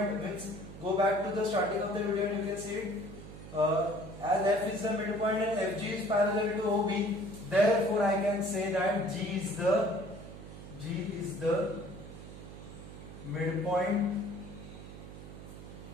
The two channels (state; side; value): noise; right; hum, 13 dB below the sound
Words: means go back to the starting of the video and you can see it. As F is the midpoint and FG is parallel to OB, therefore I can say that G is the midpoint